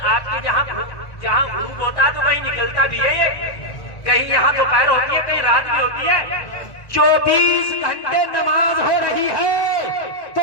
آپ کے جہاں غروب ہوتا ہے تو کہیں نکلتا بھی ہے، یہ کہیں یہاں دوپہر ہوتی ہے، کہیں رات بھی ہوتی ہے. 24 گھنٹے نماز ہو رہی ہے تو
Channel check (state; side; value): late; right; 1.5 ms